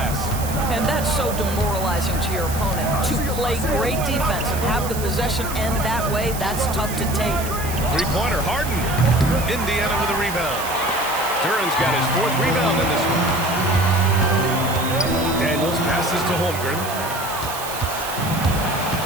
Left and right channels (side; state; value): right; noise; hiss, 10 dB below the sound